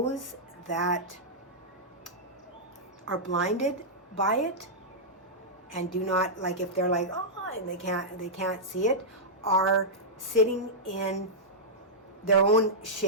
that are blinded by it and do not, like, if they're like, and they can't see it, are sitting in their own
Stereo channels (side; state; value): both; normal; correlation -0.10